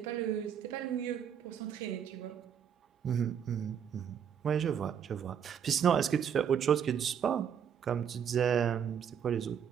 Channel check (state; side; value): quieter; left; 8.1 dB